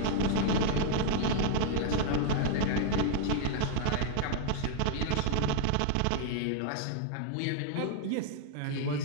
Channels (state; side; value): different; both; correlation 0.00